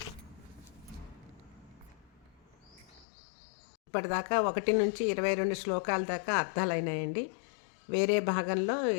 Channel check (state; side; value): drops out; right; at 3.1 s